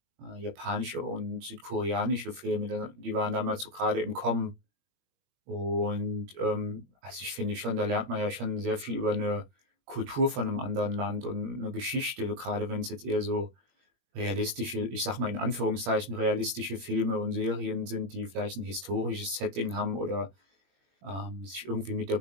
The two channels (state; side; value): late; left; 21 ms